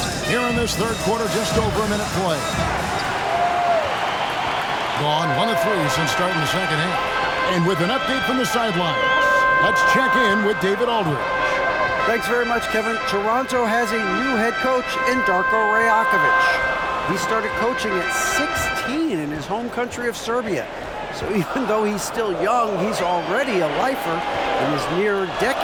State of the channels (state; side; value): identical; both; correlation 1.00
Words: Here in this third quarter, just over a minute play. Gone 1 of 3 since starting the second half. And with an update from the sidelines, let's check in with David Aldridge. Thanks very much, Kevin. Toronto has a new head coach in Darko Rajakovic. He started coaching at 16 in his home country of Serbia. So even though he's still young, he's already a lifer. In his near